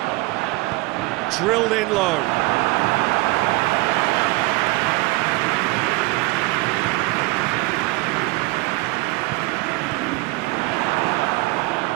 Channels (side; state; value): left; quieter; 22.2 dB